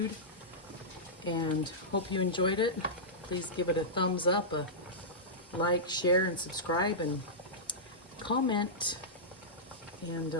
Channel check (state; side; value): normal; both; correlation -0.13